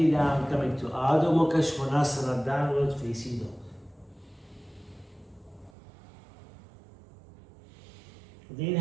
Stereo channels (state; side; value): drops out; left; at 5.7 s